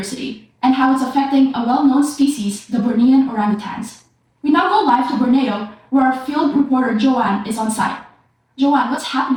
and how it's affecting a well-known species, the Bornean orangutans. We now go live to Borneo, where our field reporter Joanne is on site. Joanne, what's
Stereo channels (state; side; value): identical; both; correlation 1.00